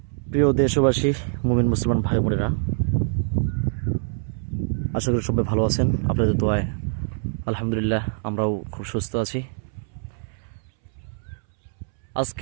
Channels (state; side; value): silent; left; 62 dB below the other